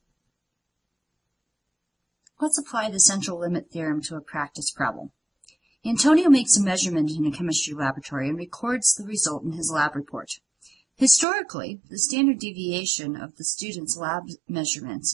Let's apply the central limit theorem to a practice problem. Antonio makes a measurement in a chemistry laboratory and records the result in his lab report. Historically, the standard deviation of the student's lab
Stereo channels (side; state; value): left; drops out; at 11.2 s